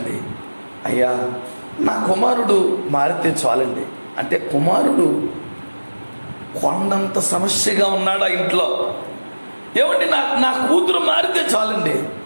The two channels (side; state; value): both; inverted; correlation -1.00